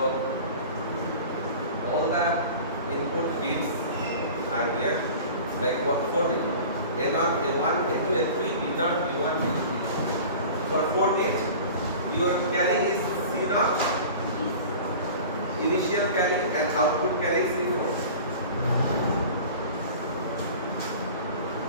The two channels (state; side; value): inverted; both; correlation -0.39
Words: all the input bits are here, like what 4 bit. A0, A1, A2, A3, B0, B1, B3. For 4 bit, your carry is C0, initial carry, and output carry is C4.